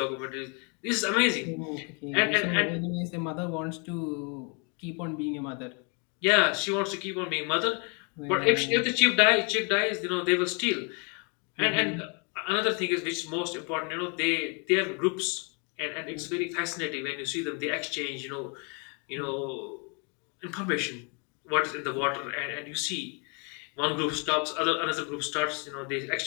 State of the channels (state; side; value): quieter; right; 35.5 dB